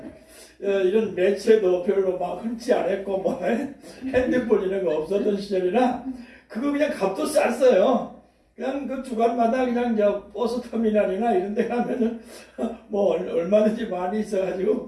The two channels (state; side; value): identical; both; correlation 1.00